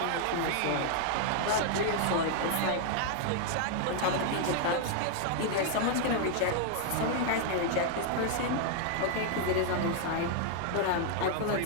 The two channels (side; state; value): both; different; correlation 0.00